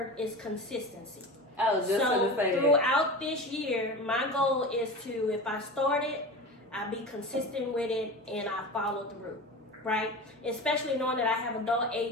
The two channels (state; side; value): normal; both; correlation 0.30